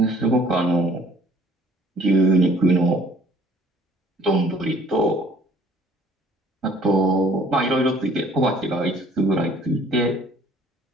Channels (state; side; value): normal; both; correlation 0.57